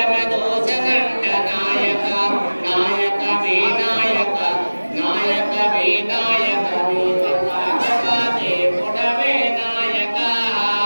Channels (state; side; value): inverted; both; correlation -1.00